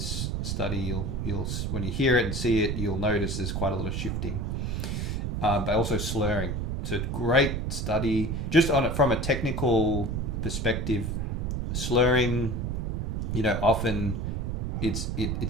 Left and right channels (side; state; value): right; noise; rumble, 1 dB below the sound